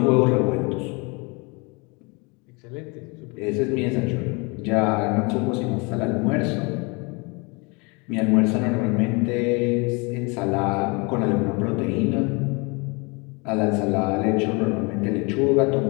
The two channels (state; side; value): quieter; right; 29.5 dB